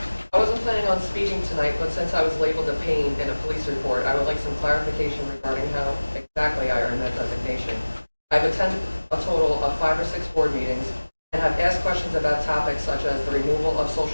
I wasn't planning on speaking tonight, but since I was labeled a pain in a police report, I would like some clarification regarding how exactly I earned that designation. I've attended a total of 5 or 6 board meetings and have asked questions about topics such as the removal of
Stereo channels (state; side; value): inverted; both; correlation -1.00